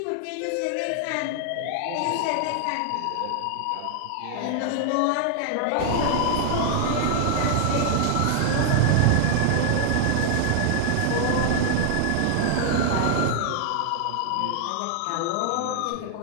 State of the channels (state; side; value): different; both; correlation 0.00